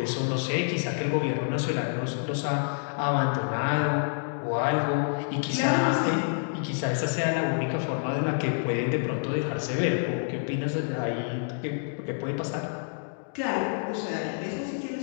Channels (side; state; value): right; silent; digital silence